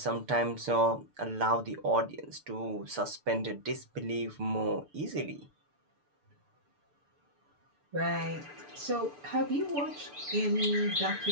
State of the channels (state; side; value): late; left; 6.8 ms